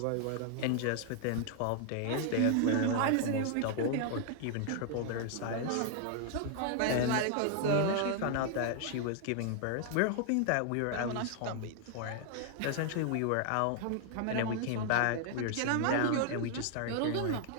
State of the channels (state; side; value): different; both; correlation 0.00